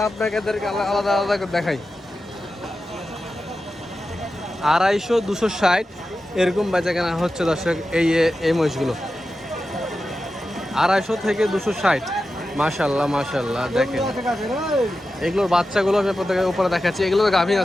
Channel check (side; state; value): both; normal; correlation 0.92